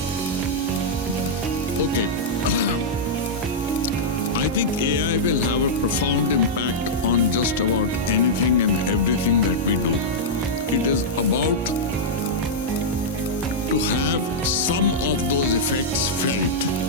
Okay. I think AI will have a profound impact on just about anything and everything that we do. It is about to have some of those effects felt.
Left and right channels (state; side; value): normal; both; correlation -0.07